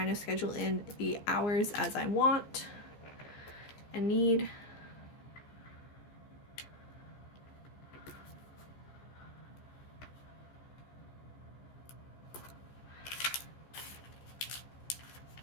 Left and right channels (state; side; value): late; right; 15 ms